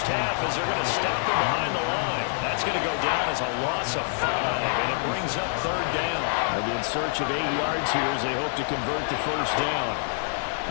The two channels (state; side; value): silent; right; digital silence